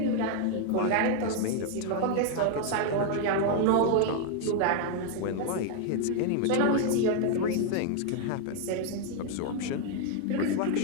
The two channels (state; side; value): different; both; correlation 0.00